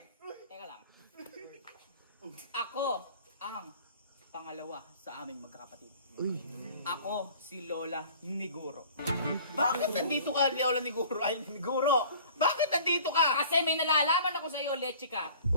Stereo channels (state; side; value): inverted; both; correlation -0.47